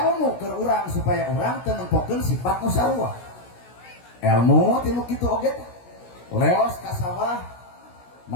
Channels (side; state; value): right; late; 17 ms